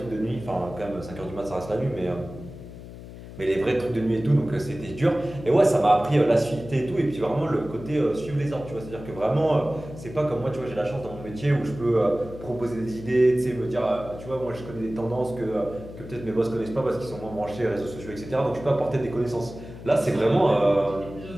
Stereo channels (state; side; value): noise; left; hum, 14 dB below the sound